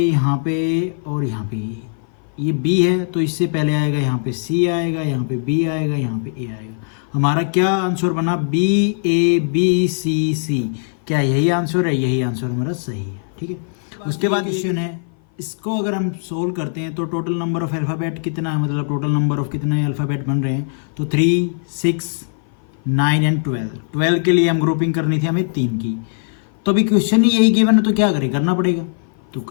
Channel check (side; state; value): right; silent; 56 dB below the other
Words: पे और यहाँ पे ये बी है, तो इससे पहले आएगा यहाँ पे सी आएगा, यहाँ पे बी आएगा, यहाँ पे ए आएगा। हमारा क्या आंसर बना, बी ए बी सी सी। क्या यही आंसर है, यही आंसर हमारा सही है। ठीक है, उसके बाद क्वेश्चन है, इसको अगर हम सोल्व करते हैं तो टोटल नंबर ऑफ अल्फ़ाबेट कितना है, मतलब टोटल नंबर ऑफ कितने अल्फ़ाबेट बन रहे हैं। तो 3, 6, 9 एंड 12 के लिए हम ग्रुपिंग करनी थी हमें 3 की। तो अभी क्वेश्चन ही यही गिवन है तो क्या करें, करना पड़ेगा। तो